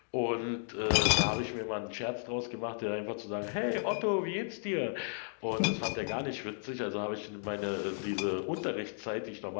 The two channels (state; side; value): silent; right; digital silence